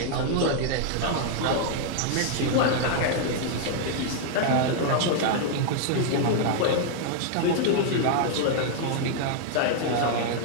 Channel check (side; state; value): both; different; correlation 0.00